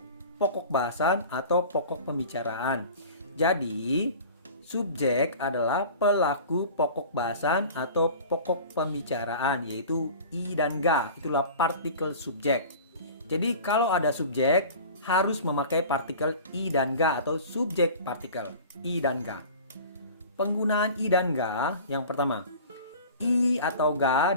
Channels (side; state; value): both; inverted; correlation -0.40